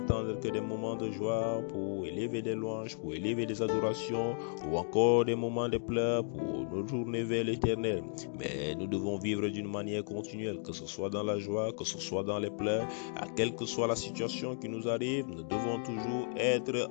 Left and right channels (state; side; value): silent; right; 55 dB below the other